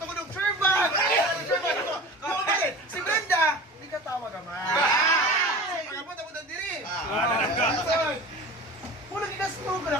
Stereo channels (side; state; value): both; normal; correlation 0.36